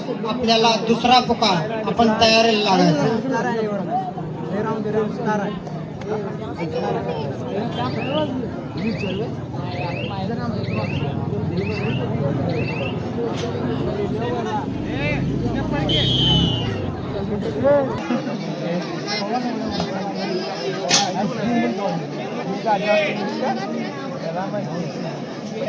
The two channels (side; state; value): both; identical; correlation 1.00